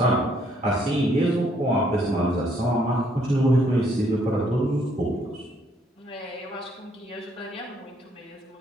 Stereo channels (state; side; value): normal; both; correlation 0.68